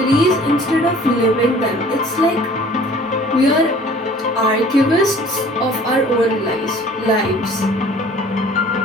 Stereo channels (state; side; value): normal; both; correlation 0.50